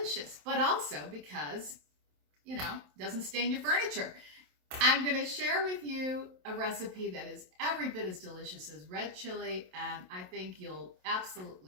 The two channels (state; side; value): late; left; 27 ms